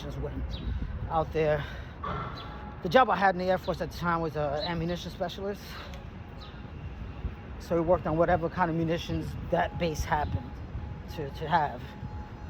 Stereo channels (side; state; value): both; identical; correlation 1.00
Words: Wing, out there. The job I had in the Air Force at the time was an ammunition specialist. So we worked on whatever kind of munitions that base happened to have